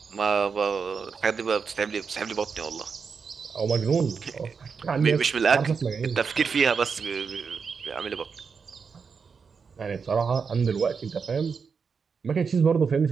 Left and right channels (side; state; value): left; quieter; 5.7 dB